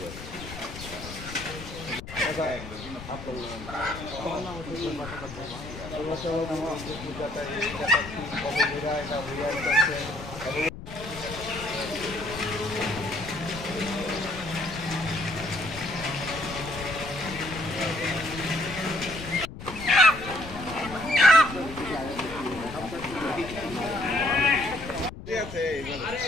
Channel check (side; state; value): left; noise; rumble, 12 dB below the sound